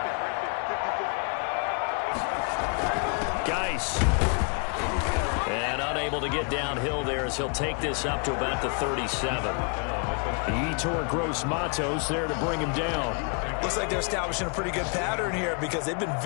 Geis. And unable to get downhill there as he'll take this up to about the 37. Yetur Gross-Matos there to bring him down. Looks like they're establishing a pretty good pattern here because they've been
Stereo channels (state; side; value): quieter; right; 39.2 dB